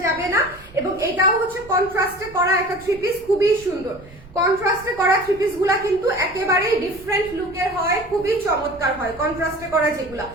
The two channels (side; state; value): right; noise; rumble, 21 dB below the sound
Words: যাবে না। এবং এটাও হচ্ছে কন্ট্রাস্টে করা একটা থ্রি পিস, খুবই সুন্দর। কন্ট্রাস্টে করা থ্রি পিস গুলা কিন্তু একেবারেই ডিফারেন্ট লুকের হয়, খুবই চমৎকার হয় কন্ট্রাস্টে করা যেগুলা।